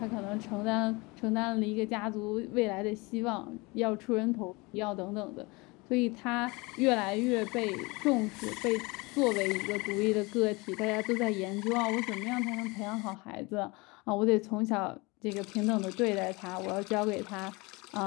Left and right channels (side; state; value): right; quieter; 25.5 dB